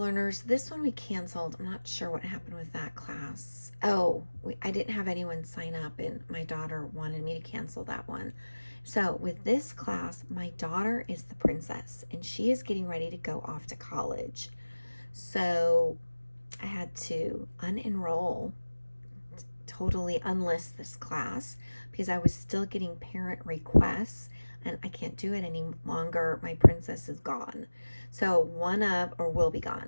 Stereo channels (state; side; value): inverted; both; correlation -1.00